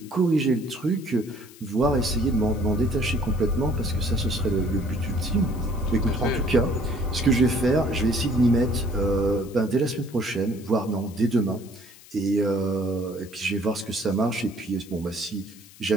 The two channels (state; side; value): noise; left; hiss, 22 dB below the sound